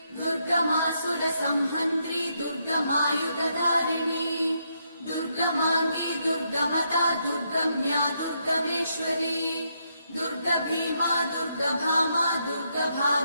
दुर्गमासुरसंहन्त्री दुर्गमायुधधारिणी दुर्गमाङ्गी दुर्गमता दुर्गम्या दुर्गमेश्वरी दुर्गभीमा दुर्गभामा दुर्गभा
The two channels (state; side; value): inverted; both; correlation -0.78